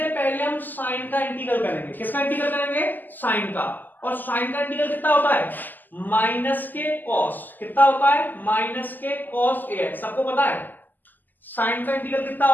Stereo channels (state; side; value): late; right; 0.087 ms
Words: पहले हम साइन का इंटीग्रल करेंगे, किसका इंटीग्रल करेंगे, साइन का, और साइन का इंटीग्रल कितना होता है, माइनस के कॉस, कितना होता है, माइनस के कॉस ax, सबको पता है साइन का इंटीग्रल कितना